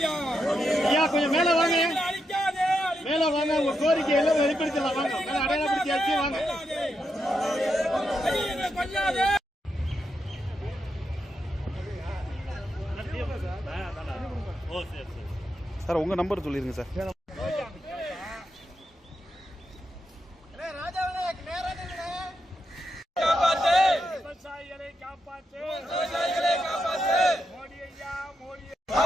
ஐயா கொஞ்சம் மேல வாங்க, மேல வாங்க. உங்க கோரிக்கை எல்லாம் வெளிப்படுத்தலாம். வாங்க, அடையாளப்படுத்தியாச்சு. வாங்க. சார் உங்க நம்பர் சொல்லிருங்க சார். விவசாயிகளை காப்பாற்று, மோடி ஐயா, மோடி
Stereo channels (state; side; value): normal; both; correlation 0.84